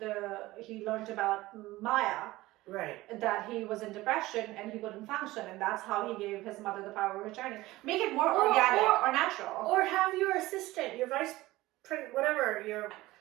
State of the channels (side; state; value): left; quieter; 18.3 dB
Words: he learned about Maya. Right. That he was in depression and he couldn't function, and that's how he gave his mother the power of attorney. Make it more organic or natural. Or have your assistant, your whatever,